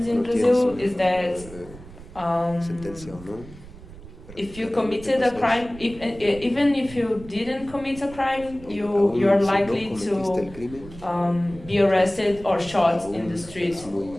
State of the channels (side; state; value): right; noise; rumble, 17 dB below the sound